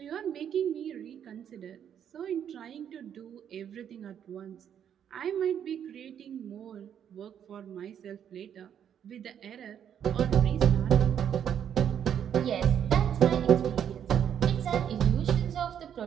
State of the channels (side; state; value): left; quieter; 9.0 dB